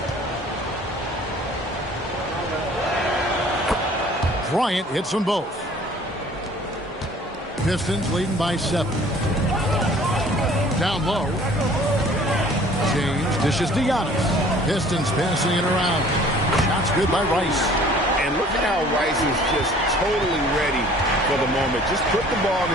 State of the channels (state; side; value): normal; both; correlation 0.52